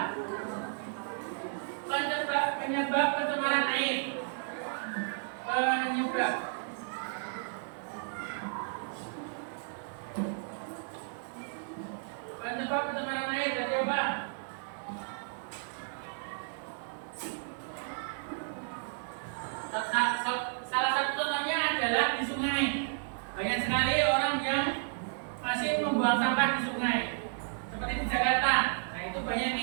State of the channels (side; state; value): left; silent; 56 dB below the other